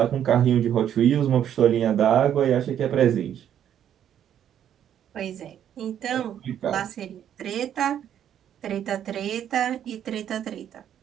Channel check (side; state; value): left; quieter; 9.9 dB